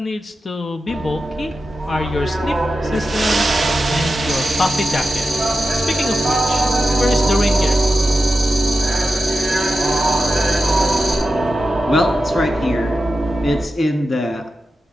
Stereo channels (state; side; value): normal; both; correlation 0.91